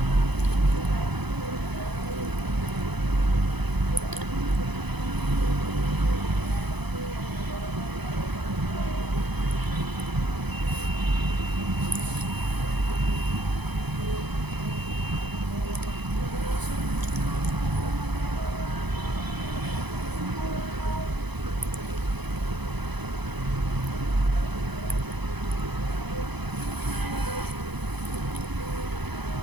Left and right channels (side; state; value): left; late; 0.99 ms